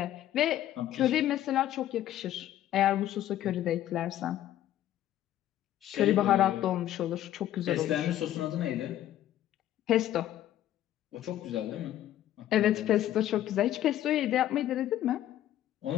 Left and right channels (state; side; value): quieter; right; 12.5 dB